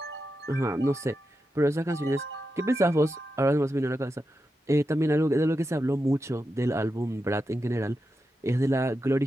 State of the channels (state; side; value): normal; both; correlation 0.89